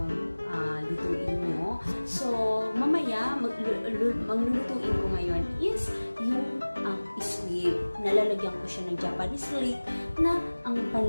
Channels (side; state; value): both; inverted; correlation -1.00